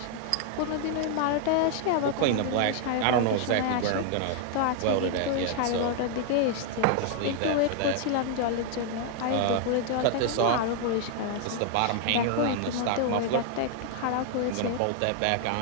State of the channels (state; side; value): different; both; correlation 0.00